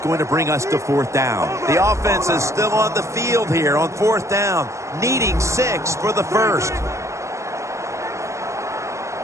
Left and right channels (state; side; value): late; left; 0.14 ms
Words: to bring us to 4th down. The offense is still on the field here on 4th down, needing 6 for the first.